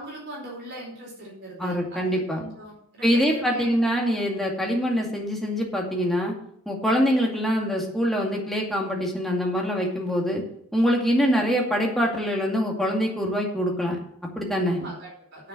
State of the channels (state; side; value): normal; both; correlation 0.69